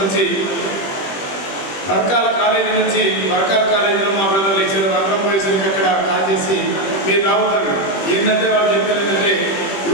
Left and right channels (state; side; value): late; right; 21 ms